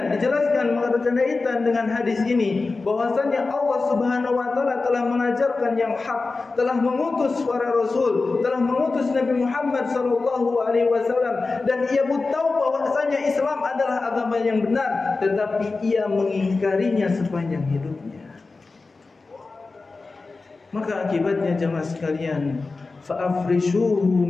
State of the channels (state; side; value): quieter; right; 3.8 dB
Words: Dijelaskan berkaitan dengan hadis ini bahwasanya Allah Subhanahu wa taala telah mengajarkan yang hak, telah mengutus para rasul, telah mengutus Nabi Muhammad sallallahu alaihi wasallam, dan ia pun tahu bahwasanya Islam adalah agama yang benar, tetapi ia mengingkarinya sepanjang hidupnya. Maka akibatnya jemaah sekalian, fa'afrishuhu